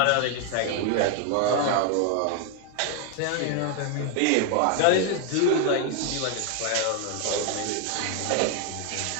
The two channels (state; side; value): different; both; correlation 0.01